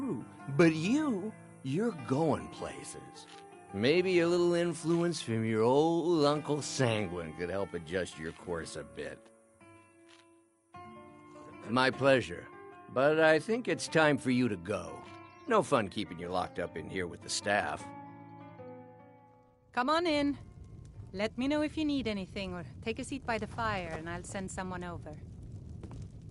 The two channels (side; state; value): both; identical; correlation 1.00